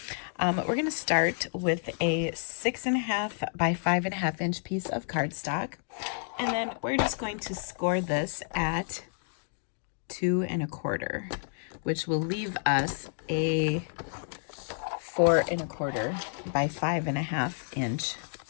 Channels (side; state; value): right; silent; digital silence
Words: We're going to start with a 6.5 by 5.5 inch piece of cardstock. And then we're just going to score this at 2.25, which will leave us a 4.25 by 5.5 inch